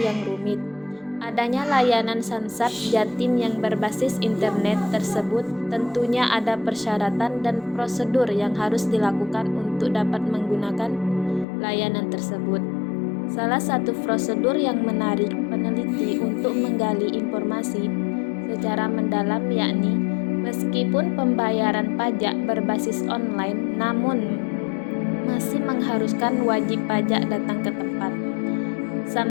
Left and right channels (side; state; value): right; drops out; at 11.5 s